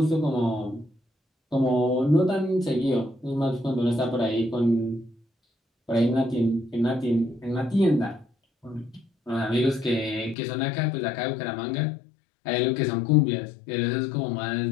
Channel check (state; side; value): drops out; right; at 10.4 s